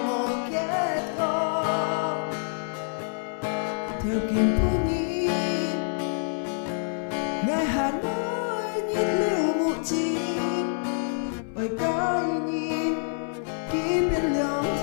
một kết con theo kim phú nhi ngài hà nội nhìn lưu một chim ôi cái nhìn ký bên lòng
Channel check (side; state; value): right; silent; 60 dB below the other